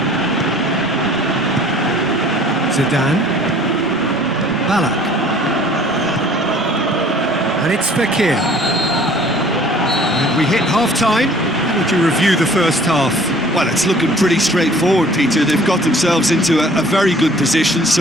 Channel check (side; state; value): both; normal; correlation 0.52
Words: Zidane. Balak. And it's Fakir. We hit half-time. How would you review the first half? Well, it's looking pretty straightforward, Peter. They've got themselves into a very good position,